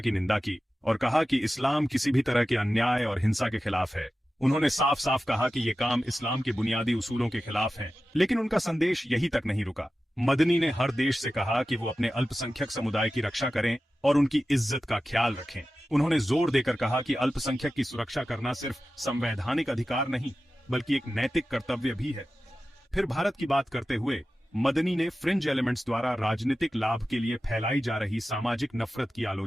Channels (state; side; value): normal; both; correlation 0.94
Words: निंदा की और कहा कि इस्लाम किसी भी तरह के अन्याय और हिंसा के खिलाफ है। उन्होंने साफ साफ कहा कि ये काम इस्लाम के बुनियादी उसूलों के खिलाफ है, लेकिन उनका संदेश यही तक नहीं रुका। मदनी ने हर देश से कहा कि वो अपने अल्पसंख्यक समुदाय की रक्षा करें और उनकी इज्जत का ख्याल रखें। उन्होंने जोर देकर कहा कि अल्पसंख्यक की सुरक्षा करना सिर्फ संवैधानिक अधिकार नहीं बल्कि एक नैतिक कर्तव्य भी है। फिर भारत की बात करते हुए मदनी ने फ्रिंज एलिमेंट्स द्वारा राजनीतिक लाभ के लिए फैलाई जा रही सामाजिक नफरत की